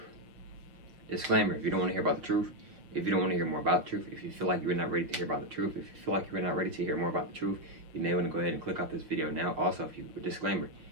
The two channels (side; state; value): left; late; 6.0 ms